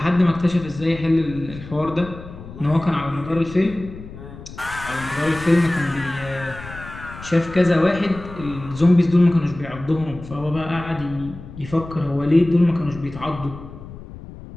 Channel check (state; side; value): noise; left; rumble, 14 dB below the sound